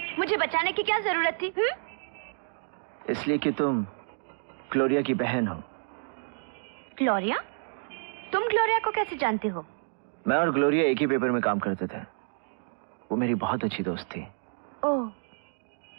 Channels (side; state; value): left; silent; digital silence